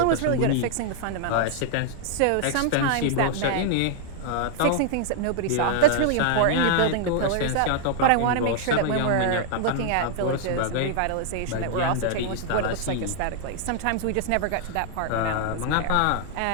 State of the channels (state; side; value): different; both; correlation -0.01